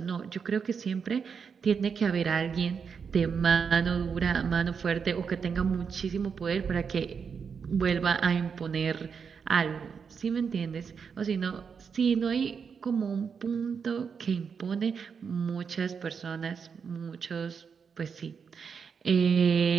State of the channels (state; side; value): quieter; left; 6.2 dB